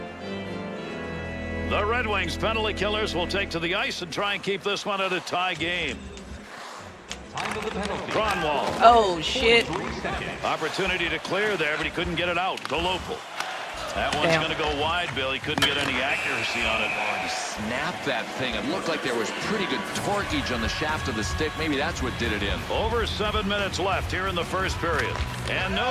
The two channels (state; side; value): identical; both; correlation 1.00